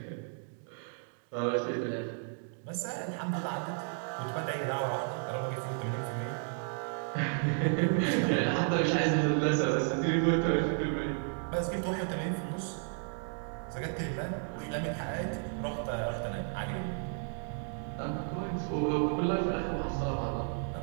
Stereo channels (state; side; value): silent; left; 56 dB below the other